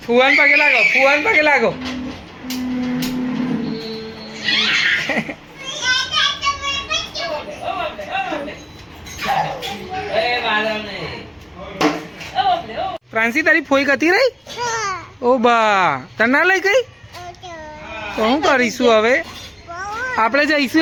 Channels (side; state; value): both; identical; correlation 1.00